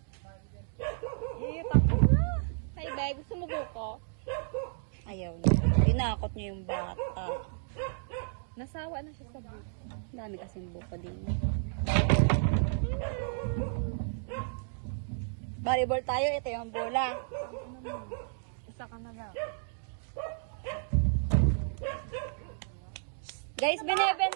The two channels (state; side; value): silent; left; digital silence